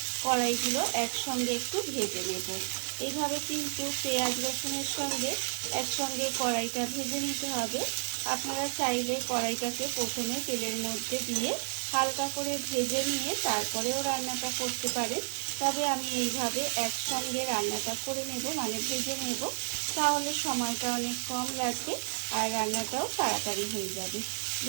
কড়াইগুলো একসঙ্গে একটু ভেজে নেব। এইভাবে কিন্তু পেঁয়াজ রসুনের সঙ্গে একসঙ্গে কড়াইটা ভেজে নিতে হবে। আপনারা চাইলে কড়াইটাকে প্রথমে তেলের মধ্যে দিয়ে হালকা করে ভেজে নিয়ে তারপরেও রান্নাটা করতে পারেন, তবে আমি এইভাবে একসঙ্গে রান্নাটা করে নেব, মানে ভেজে নেব। তাহলে সময়টা অনেক কম লাগবে আর রান্নাটাও তাড়াতাড়ি হয়ে যাবে।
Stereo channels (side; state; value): left; silent; digital silence